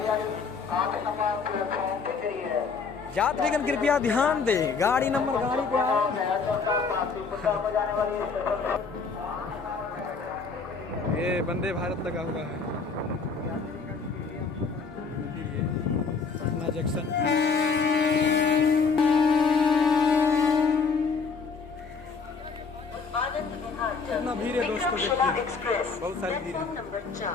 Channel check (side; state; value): right; quieter; 5.0 dB